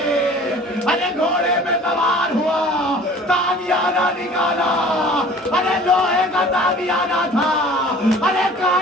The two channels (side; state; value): both; normal; correlation 0.47